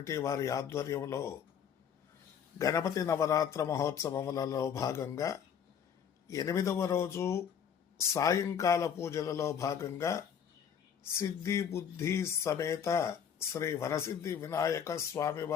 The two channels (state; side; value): quieter; right; 8.0 dB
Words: వారి ఆధ్వర్యంలో గణపతి నవరాత్ర మహోత్సవములలో భాగంగా 8వ రోజు సాయంకాల పూజలలో భాగంగా సిద్ధి బుద్ధి సమేత శ్రీ వరసిద్ధి వినాయక